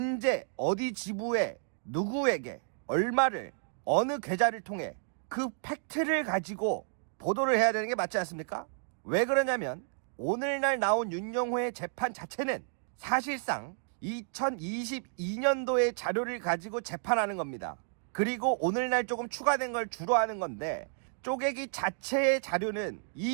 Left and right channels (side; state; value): left; silent; digital silence